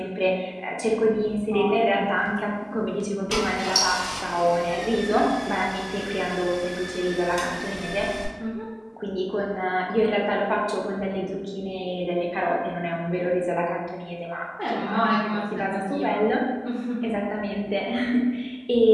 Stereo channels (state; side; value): identical; both; correlation 1.00